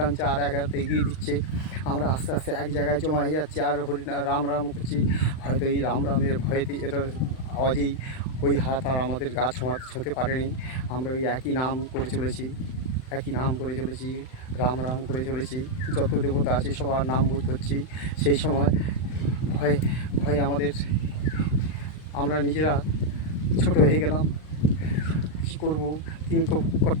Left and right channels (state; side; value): late; right; 39 ms